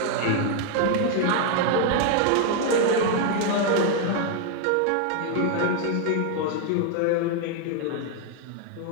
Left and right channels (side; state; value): both; different; correlation 0.00